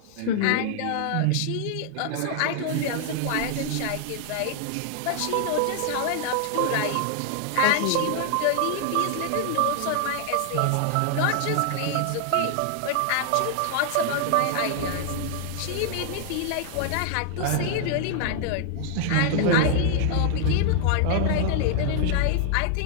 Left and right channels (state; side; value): different; both; correlation 0.00